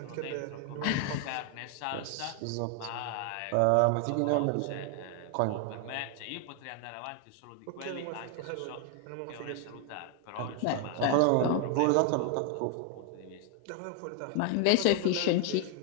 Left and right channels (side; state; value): both; different; correlation 0.00